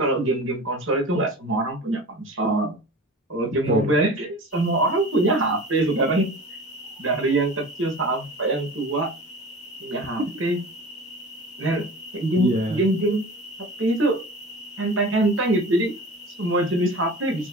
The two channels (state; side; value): normal; both; correlation 0.36